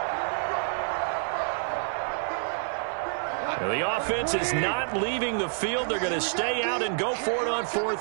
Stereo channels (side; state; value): left; silent; digital silence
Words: Now, the offense is not leaving the field. They're going to stay out and go for it on